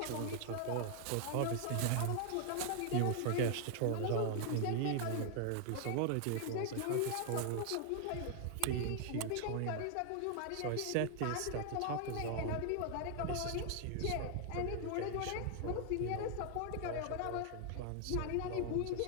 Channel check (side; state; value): both; different; correlation 0.00